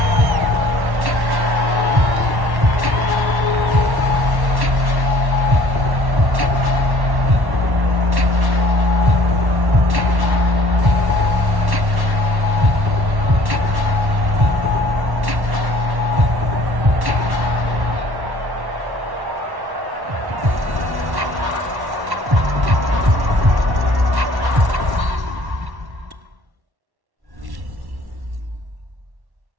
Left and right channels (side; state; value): left; late; 1.1 ms